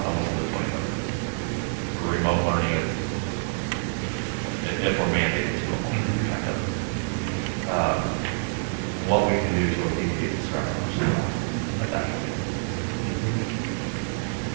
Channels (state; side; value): silent; left; 61 dB below the other